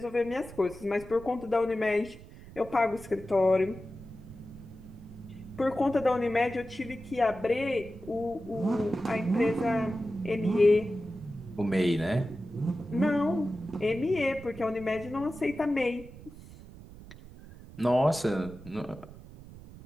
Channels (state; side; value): noise; right; rumble, 17 dB below the sound